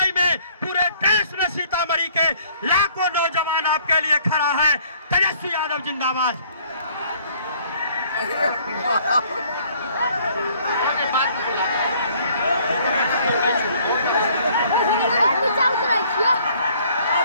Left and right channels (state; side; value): inverted; both; correlation -0.59